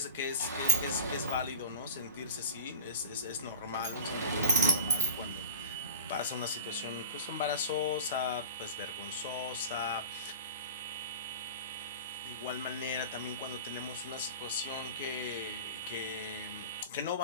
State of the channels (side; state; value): both; inverted; correlation -0.36